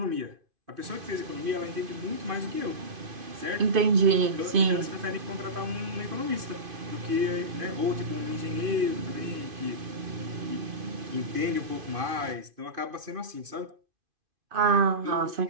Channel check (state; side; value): late; left; 2.5 ms